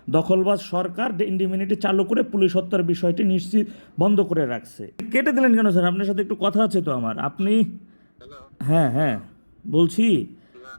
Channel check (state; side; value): inverted; both; correlation -1.00